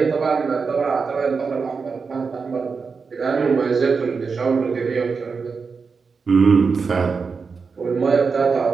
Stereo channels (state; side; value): quieter; left; 5.1 dB